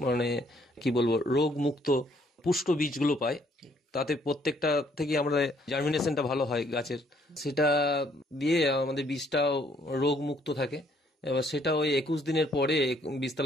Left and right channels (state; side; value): normal; both; correlation 0.66